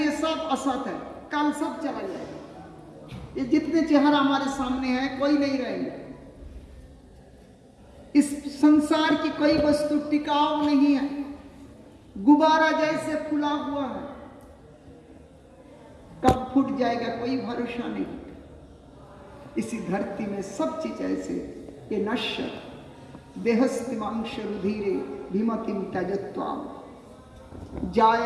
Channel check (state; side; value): identical; both; correlation 1.00